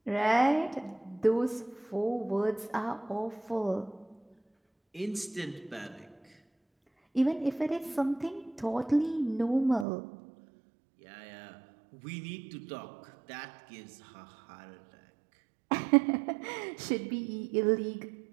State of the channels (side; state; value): left; drops out; at 9.9 s